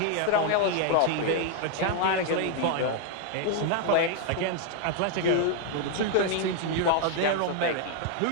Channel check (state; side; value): different; both; correlation 0.00